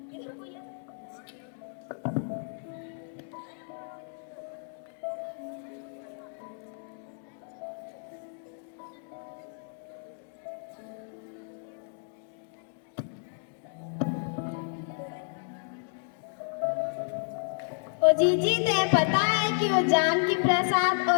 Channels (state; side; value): silent; right; digital silence